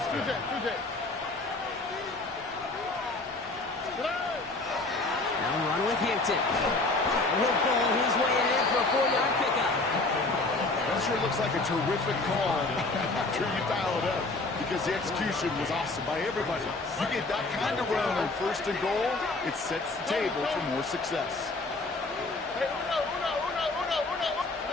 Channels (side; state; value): right; quieter; 3.2 dB